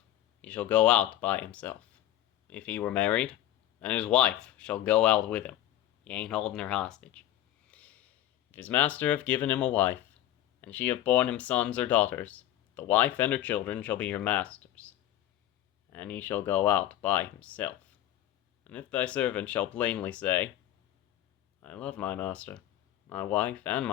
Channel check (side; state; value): right; quieter; 12.9 dB